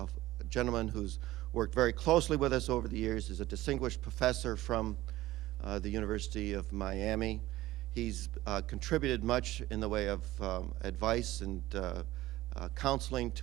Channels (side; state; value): left; quieter; 16.6 dB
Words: gentleman who's worked very closely with us over the years, is a distinguished professor from the University of Miami. He's contributed much in the way of advice and counseling